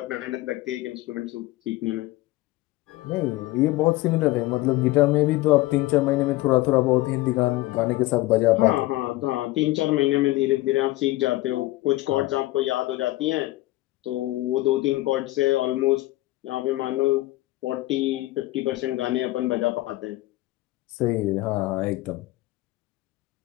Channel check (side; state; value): right; quieter; 18.3 dB